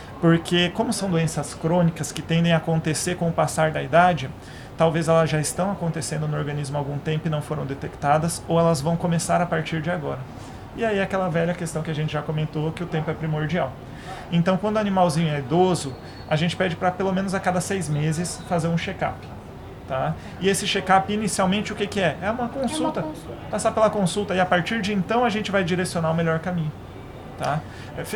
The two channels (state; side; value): identical; both; correlation 1.00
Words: Porque como são doenças crônicas que tendem a acontecer com o passar da idade, talvez elas já estão acontecendo no organismo há algum tempo e não foram detectadas, ou elas vão começar a partir de agora. E aí aquela velha questão que a gente já comentou, que o tempo é primordial. Então, quando o animalzinho é idoso, a gente pede para pelo menos a cada 6 meses fazer um check-up. Tá? E esse check-up, inicialmente, o que é? É uma consulta. Passar pela consulta e a partir de então a gente vai direcionar o melhor caminho. Tá?